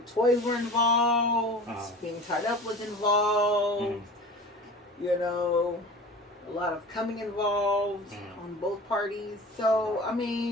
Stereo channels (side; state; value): both; normal; correlation 0.37